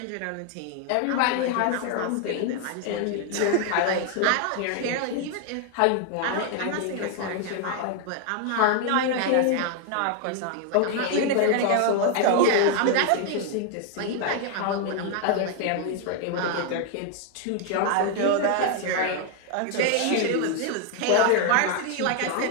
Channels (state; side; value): different; both; correlation 0.00